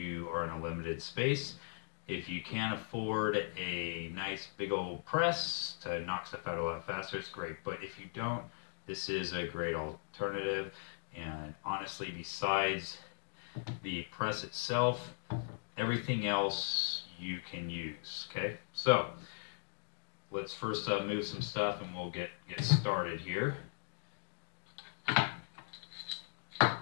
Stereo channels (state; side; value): silent; right; digital silence